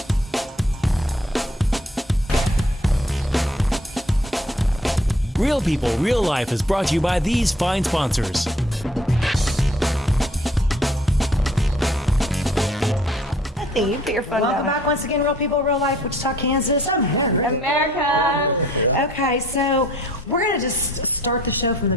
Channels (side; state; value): both; normal; correlation 0.58